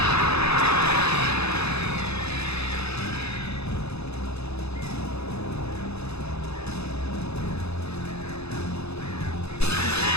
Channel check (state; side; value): late; right; 0.79 ms